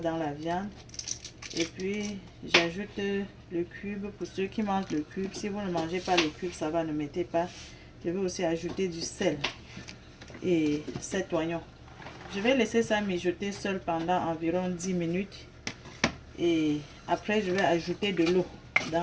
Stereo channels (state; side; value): identical; both; correlation 1.00